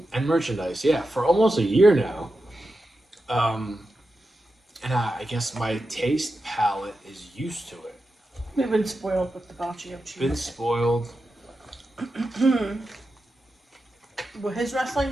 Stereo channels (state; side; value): normal; both; correlation 0.90